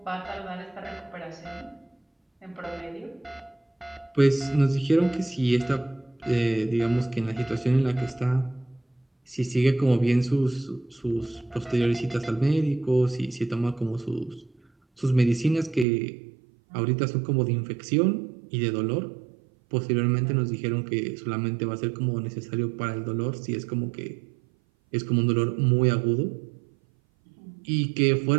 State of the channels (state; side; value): drops out; left; at 15.9 s